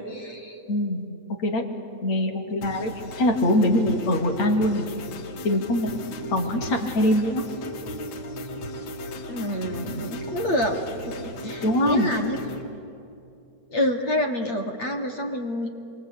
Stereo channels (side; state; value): right; late; 8.9 ms